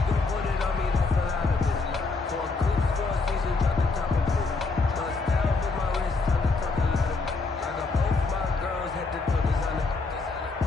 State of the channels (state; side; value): quieter; right; 3.9 dB